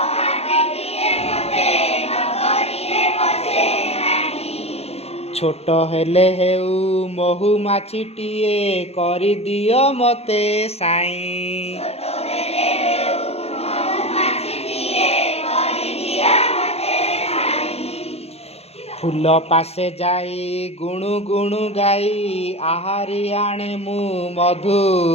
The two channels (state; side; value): late; right; 0.30 ms